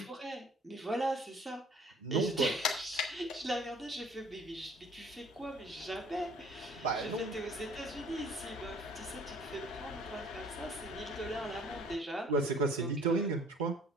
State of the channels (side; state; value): both; normal; correlation 0.54